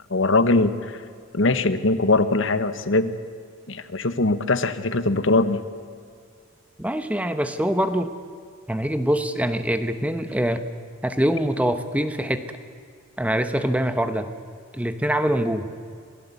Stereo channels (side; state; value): both; normal; correlation 0.40